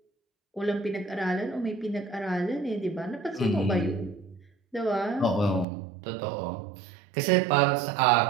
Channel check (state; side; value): drops out; left; at 5.7 s